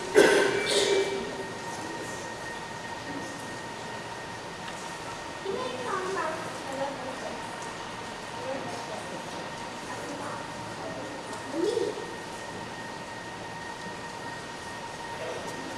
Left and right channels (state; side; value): identical; both; correlation 1.00